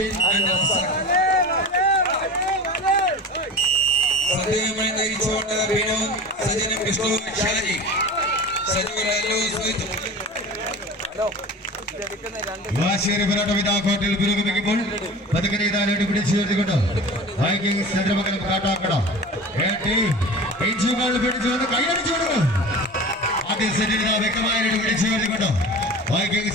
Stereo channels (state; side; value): normal; both; correlation 0.34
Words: and Razak. സദ്യയുമായി നയിച്ചുകൊണ്ട് Binu സജനും Vishnu Shaji വാശിയേറിയ പോരാട്ടം ഇതാ കോട്ടയിൽ പുരോഗമിക്കുമ്പോൾ പതുക്കെ ഇതാലോട്ട് പിടിച്ചു ചേർത്തുകൊണ്ട് വൈകിങ്സ് ചന്ദ്രമംഗലം കാട്ടാക്കട ഇഞ്ചുകൾ പിടിച്ചു വന്ന് കൈയടിച്ചു കൊടുക്കും. ആദ്യ സെറ്റിൽ ഇതാ വ്യക്തമായിട്ട് പിടിച്ചു ചേർത്തുകൊണ്ട്